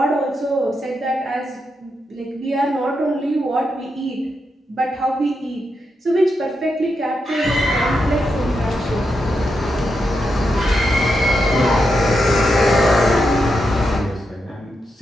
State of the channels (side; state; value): both; normal; correlation 0.84